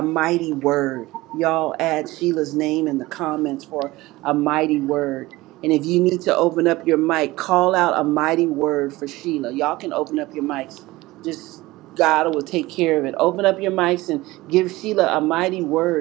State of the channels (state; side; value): quieter; left; 19.4 dB